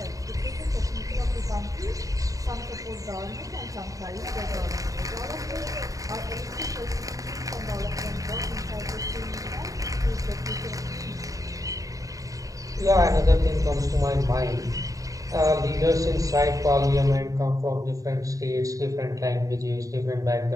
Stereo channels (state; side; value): late; left; 0.16 ms